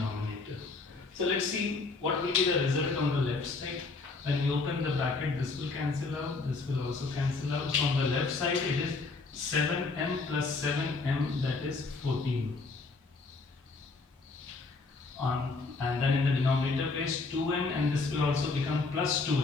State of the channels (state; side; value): quieter; right; 3.9 dB